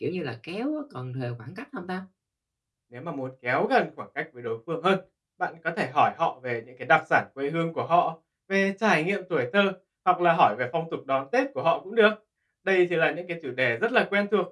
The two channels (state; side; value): identical; both; correlation 1.00